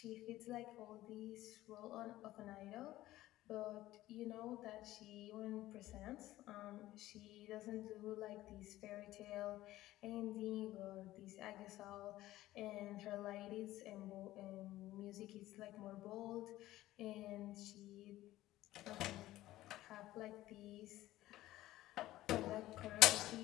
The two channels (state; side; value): quieter; right; 15.7 dB